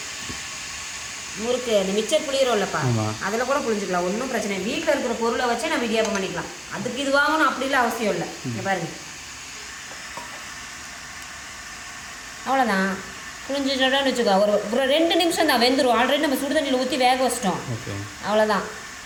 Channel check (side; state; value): both; identical; correlation 1.00